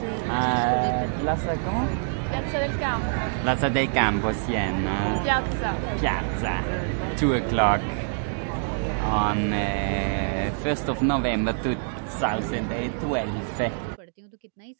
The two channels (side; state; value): left; silent; 61 dB below the other